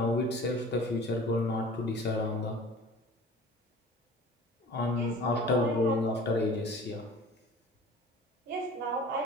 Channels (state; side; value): normal; both; correlation 0.44